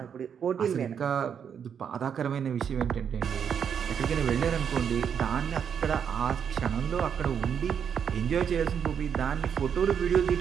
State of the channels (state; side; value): quieter; left; 7.7 dB